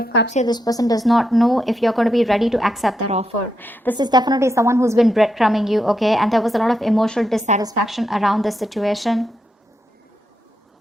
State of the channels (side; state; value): both; normal; correlation 0.83